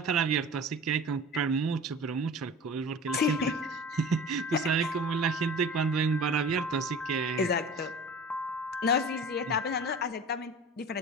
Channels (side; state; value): both; normal; correlation 0.38